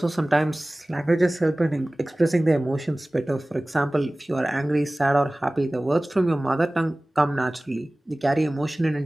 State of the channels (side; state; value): both; normal; correlation 0.98